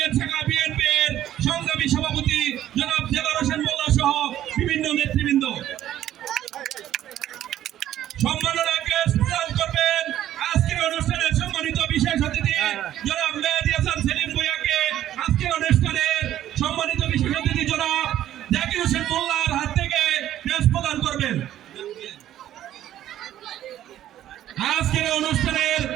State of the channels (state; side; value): quieter; left; 12.3 dB